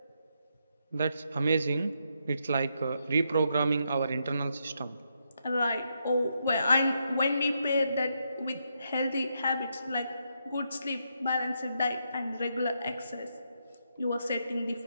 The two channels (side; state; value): both; inverted; correlation -0.80